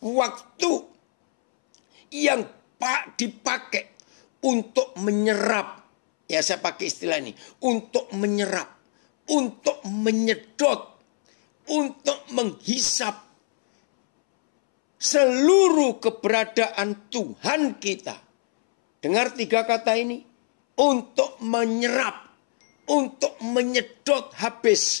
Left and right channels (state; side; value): silent; right; 63 dB below the other